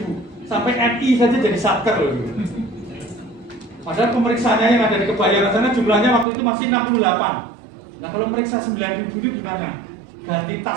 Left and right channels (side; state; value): left; drops out; at 6.2 s